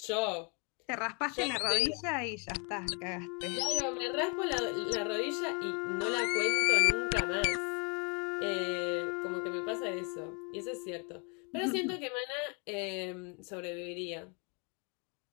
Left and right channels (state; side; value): quieter; right; 34.9 dB